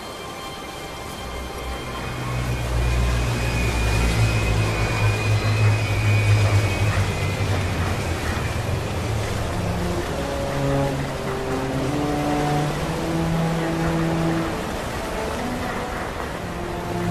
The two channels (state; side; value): identical; both; correlation 1.00